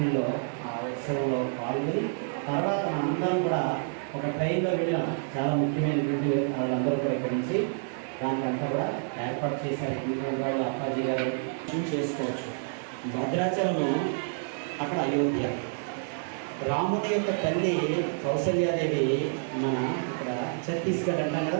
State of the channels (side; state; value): left; silent; 58 dB below the other